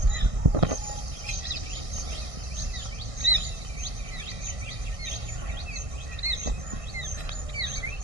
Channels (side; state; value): left; late; 1.6 ms